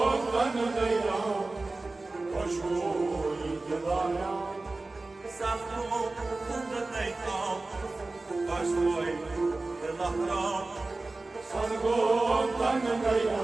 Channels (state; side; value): quieter; left; 3.2 dB